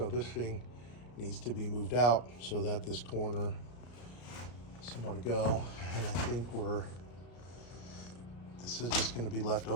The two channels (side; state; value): right; late; 34 ms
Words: this thing needs to be moved out so that this corner has somewhere to go. And I think this is just going to be left